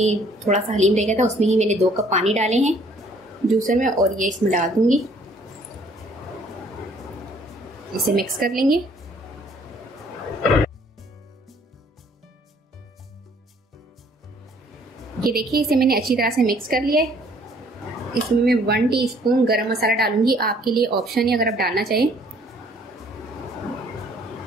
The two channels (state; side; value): normal; both; correlation 0.60